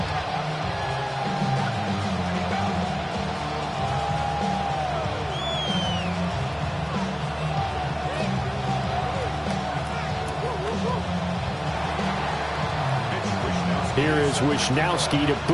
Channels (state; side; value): identical; both; correlation 1.00